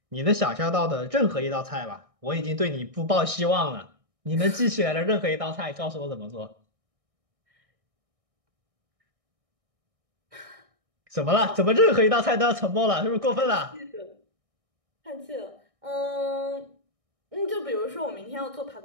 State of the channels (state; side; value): late; left; 1.6 ms